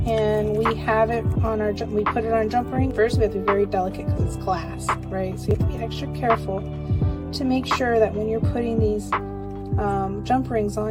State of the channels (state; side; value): identical; both; correlation 1.00